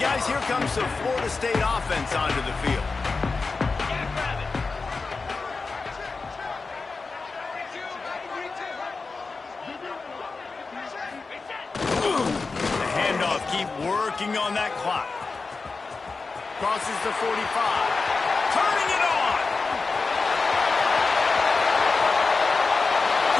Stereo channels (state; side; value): quieter; right; 4.2 dB